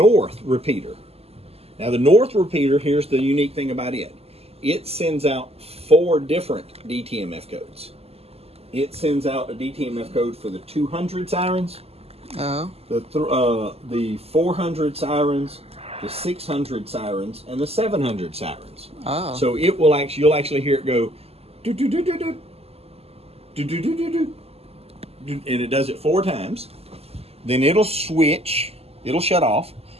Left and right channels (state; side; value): late; left; 0.29 ms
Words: repeater. Now, the north repeater, here's the unique thing about it. It sends out 4 different DTMF codes. It sends out a DTMF code for the 200 sirens, the 400 sirens, the 600 sirens, and the 700 sirens. Oh. So it will you'll actually hear it go, do do do do do, do do do do do, and it does it 4 times. Then it'll switch, it'll shut off,